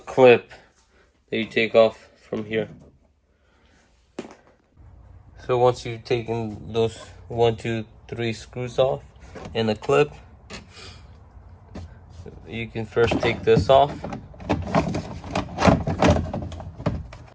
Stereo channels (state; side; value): identical; both; correlation 1.00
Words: that you take off from here. So once you've taken those 1, 2, 3 screws off and the clip, you can first take this off.